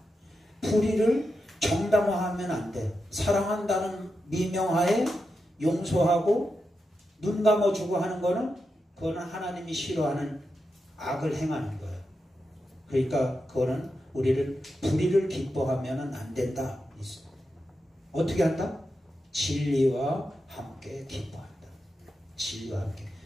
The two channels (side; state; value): both; normal; correlation 0.88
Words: 불의를 정당화하면 안 돼. 사랑한다는 미명하에 용서하고 눈 감아주고 하는 거는, 그거는 하나님이 싫어하는 악을 행하는 거예요. 그러니까 그거는 우리를 불의를 기뻐하면 안 된다. 어떻게 한다? 진리와 함께 기뻐한다. 진리와 함께.